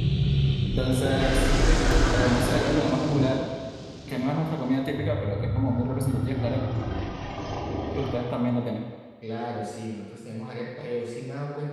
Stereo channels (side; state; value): both; identical; correlation 1.00